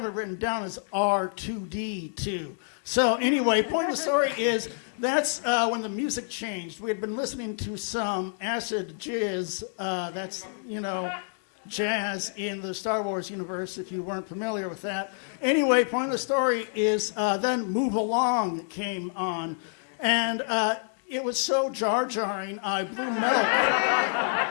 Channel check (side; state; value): right; silent; digital silence